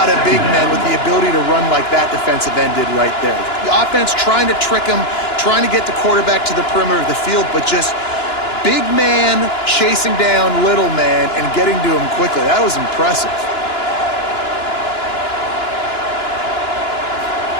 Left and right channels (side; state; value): right; late; 2.9 ms